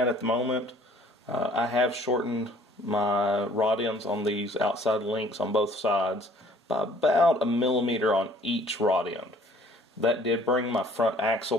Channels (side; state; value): both; normal; correlation 0.56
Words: the moment. I have shortened my rod ends on these outside links on both sides by about 1 millimeter on each rod end. That did bring my front axle